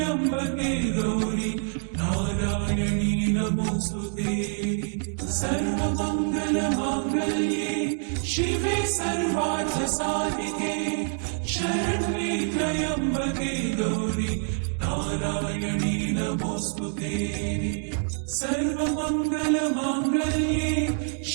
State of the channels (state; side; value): silent; left; 61 dB below the other